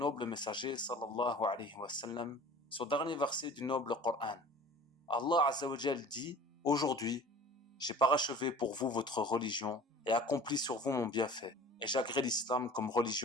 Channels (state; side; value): normal; both; correlation 0.43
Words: messager sallallahu alayhi wa sallam son dernier verset du noble Coran. Allah Azza wa Jal dit: aujourd'hui, j'ai parachevé pour vous votre religion et accompli sur vous mon bienfait, et j'agrée l'islam comme